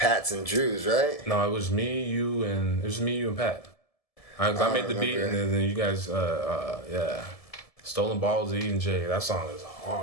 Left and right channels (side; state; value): right; late; 1.7 ms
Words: and Drew's, right? No, it was me, you, and Pat. I made the beat, and then you guys, yeah. "Stolen Balls" of E&J. That song is